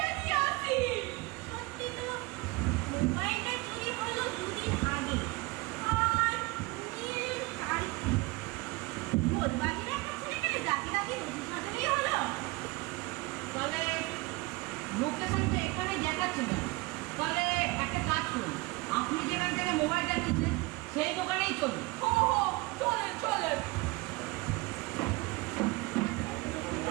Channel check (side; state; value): left; quieter; 23.3 dB